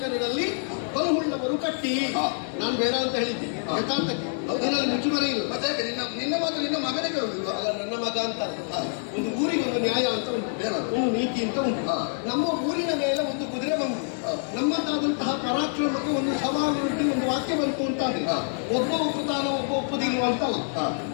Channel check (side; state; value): right; silent; digital silence